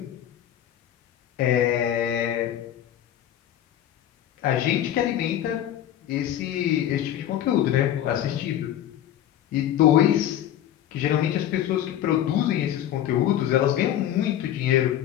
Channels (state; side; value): quieter; right; 11.4 dB